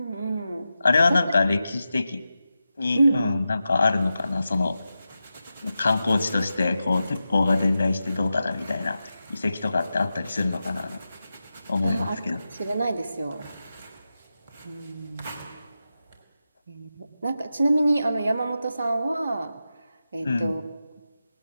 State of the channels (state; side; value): inverted; both; correlation -0.91